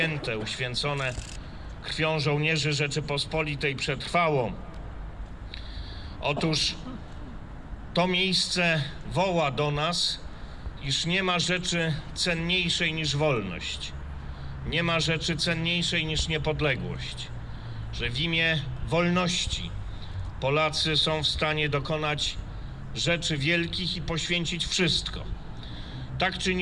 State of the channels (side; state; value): both; identical; correlation 1.00